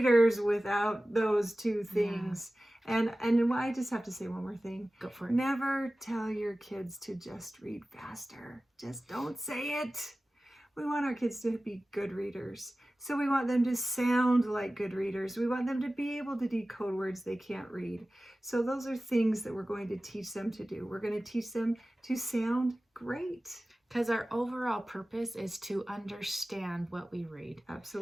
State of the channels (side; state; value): both; normal; correlation 0.96